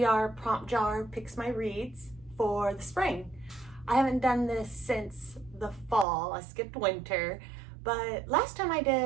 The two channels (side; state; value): left; drops out; at 6.1 s